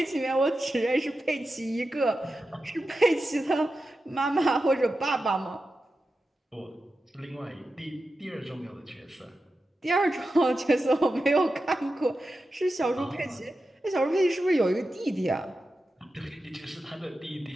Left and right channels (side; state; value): both; normal; correlation 0.91